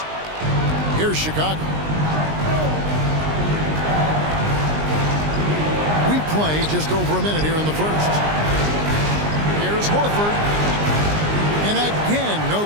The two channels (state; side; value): late; left; 19 ms